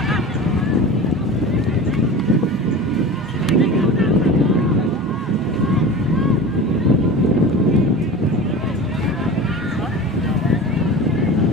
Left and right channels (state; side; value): normal; both; correlation 0.33